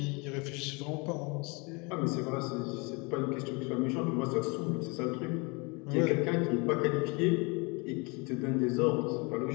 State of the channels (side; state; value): right; quieter; 29.1 dB